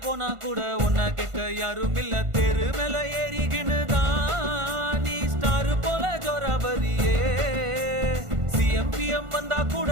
போனா கூட ஒன்ன கேட்க யாரும் இல்ல. தெரு மேல ஏறிக்கினுதான் நீ ஸ்டார் போல ஜோராபரியே. சிஎம்பிஎம் வந்தா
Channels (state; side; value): late; left; 1.5 ms